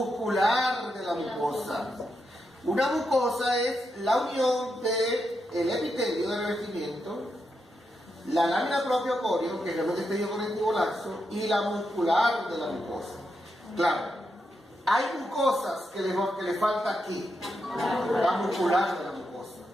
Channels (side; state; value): both; normal; correlation 0.85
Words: de la mucosa. Una mucosa es la unión del epitelio de revestimiento, la lámina propia o coreo, que es el tejido conectivo laxo, y la muscular de la mucosa. Claro, hay mucosas que le falta aquí, la muscular de la mucosa,